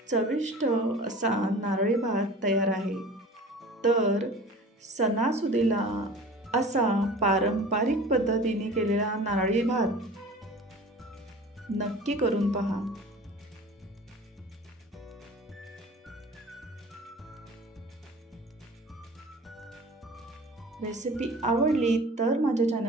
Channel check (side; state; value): both; normal; correlation 0.41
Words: चविष्ट असा नारळी भात तयार आहे. तर सणासुदीला असा पारंपरिक पद्धतीने केलेला नारळी भात नक्की करून पहा. रेसिपी आवडली तर माझ्या